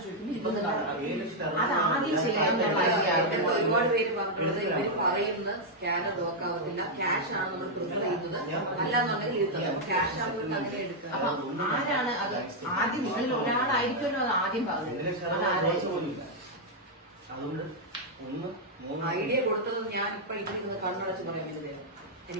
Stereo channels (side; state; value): both; normal; correlation -0.03